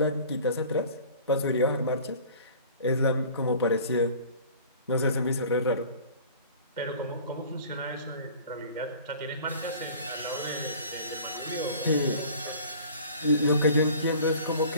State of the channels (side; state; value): both; inverted; correlation -0.45